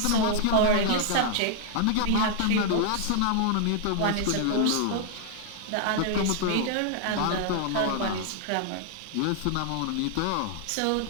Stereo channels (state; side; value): different; both; correlation 0.00